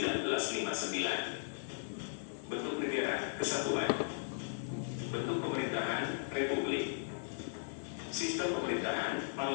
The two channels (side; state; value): right; silent; 53 dB below the other